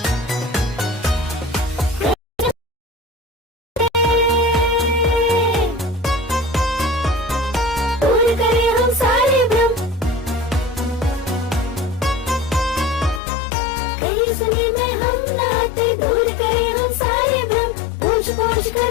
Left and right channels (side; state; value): right; drops out; at 13.2 s